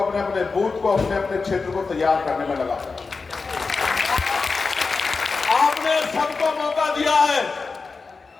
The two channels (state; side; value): quieter; right; 4.4 dB